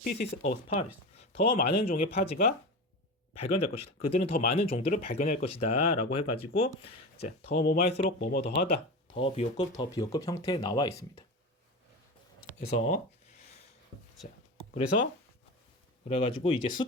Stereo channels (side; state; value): both; normal; correlation 0.26